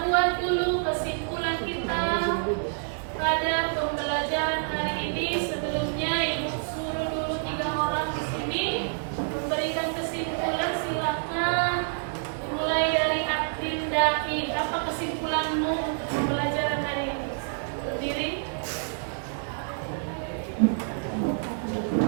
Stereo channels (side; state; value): left; silent; digital silence